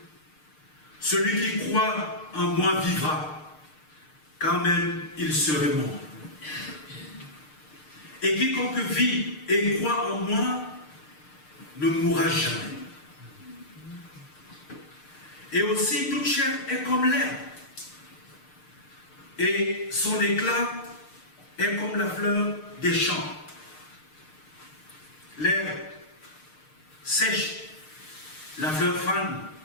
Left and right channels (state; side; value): late; right; 6.6 ms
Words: Celui qui croit en moi vivra, quand même il serait mort. Et quiconque vit et croit en moi ne mourra jamais. Et aussi, toute chair est comme l'herbe, et son éclat est comme la fleur des champs. L'herbe sèche, la fleur fane,